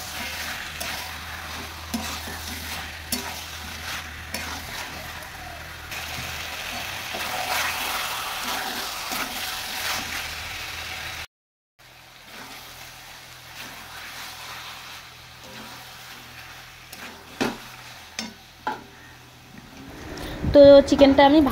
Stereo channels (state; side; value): identical; both; correlation 1.00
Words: তো চিকেনটা আমি